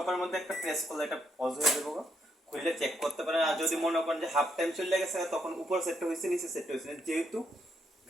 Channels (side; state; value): both; normal; correlation 0.76